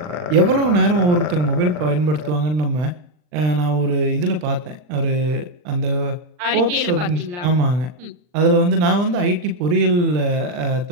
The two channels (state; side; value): late; left; 40 ms